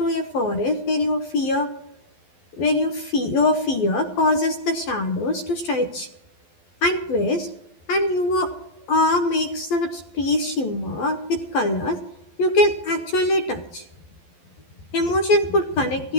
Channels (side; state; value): right; late; 12 ms